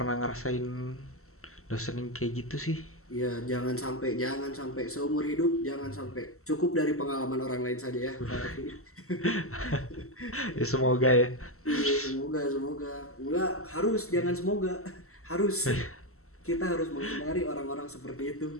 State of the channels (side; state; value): right; late; 0.63 ms